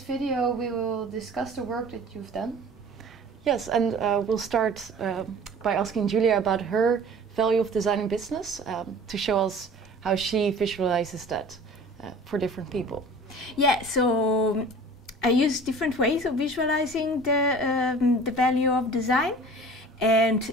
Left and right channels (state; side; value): normal; both; correlation 0.44